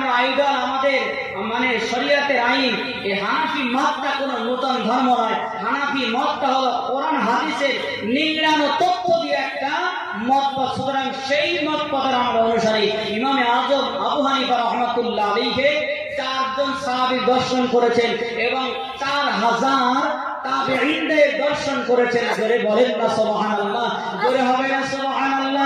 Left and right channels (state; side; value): identical; both; correlation 1.00